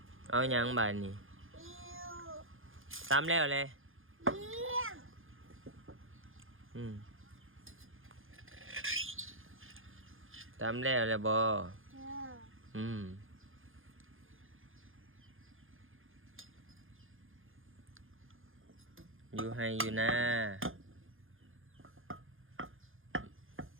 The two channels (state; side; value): late; left; 0.59 ms